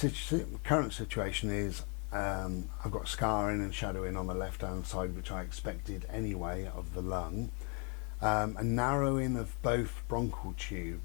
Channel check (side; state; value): right; quieter; 36.6 dB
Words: situation is I've got scarring and shadowing on the left hand side, which I expected anyway, of the lung, a narrowing of both bronchial